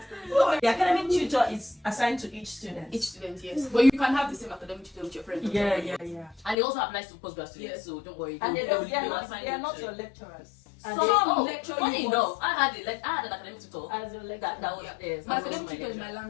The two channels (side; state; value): right; drops out; at 6.6 s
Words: stories. The academic tutor is assigned to each student. Each student, yes. But you can have the same academic tutor with your friend. Yeah. And it also applies to postgraduate students, so don't worry. And they are not your lecturers. Funny enough, I had an academic tutor. As your lecturer. That was yes. My academic tutor is my